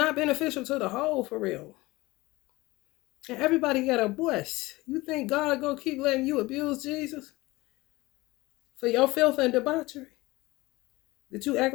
beneficial to the whole, for real. And everybody got a voice. You think God gonna keep letting you abuse Jesus for your filth and debauchery that you act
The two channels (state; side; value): quieter; right; 20.8 dB